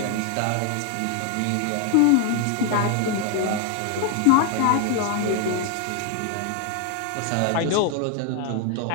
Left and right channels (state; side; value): different; both; correlation 0.01